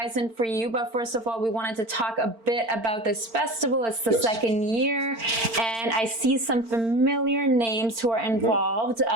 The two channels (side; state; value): left; late; 4.4 ms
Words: for you, but first of all, we wanted to talk a bit about this festival. It's the second year, and I see some familiar names who are involved,